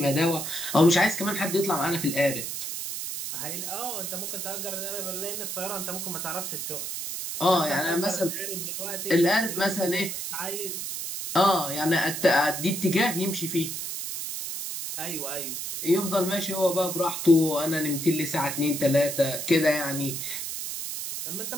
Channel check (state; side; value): noise; right; hiss, 5 dB below the sound